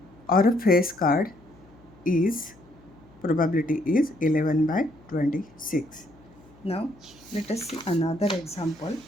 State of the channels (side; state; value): left; noise; hum, 26 dB below the sound